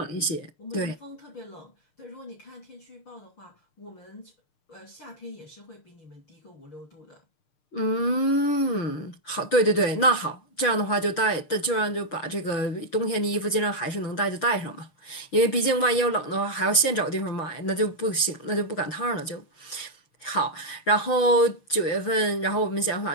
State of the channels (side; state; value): right; late; 6.6 ms